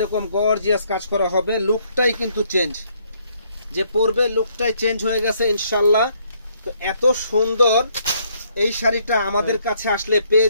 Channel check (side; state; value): both; inverted; correlation -0.69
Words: গর্জিয়াস কাজ করা হবে। লুকটাই কিন্তু চেঞ্জ, যে পরবে লুকটাই চেঞ্জ হয়ে গেছে ইনশাল্লাহ। তো এত সুন্দর এই শাড়িটা আমাদের কাছে আসলে পেয়ে